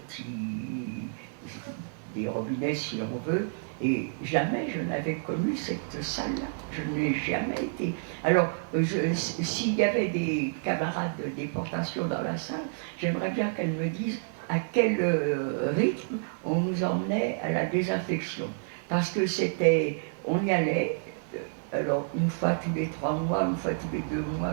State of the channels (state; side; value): silent; left; 58 dB below the other